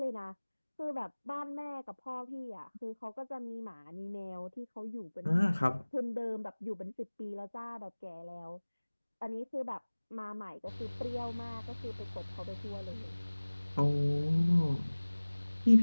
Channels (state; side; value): inverted; both; correlation -1.00